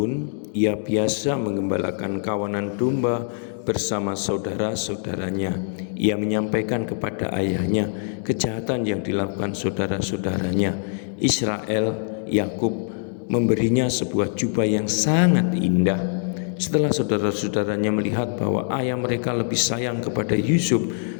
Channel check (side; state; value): right; silent; digital silence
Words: ia biasa mengembalakan kawanan domba bersama saudara-saudaranya. Ia menyampaikan kepada ayahnya kejahatan yang dilakukan saudara-saudaranya. Israel, Yakub memberinya sebuah jubah yang sangat indah. Setelah saudara-saudaranya melihat bahwa ayah mereka lebih sayang kepada Yusuf,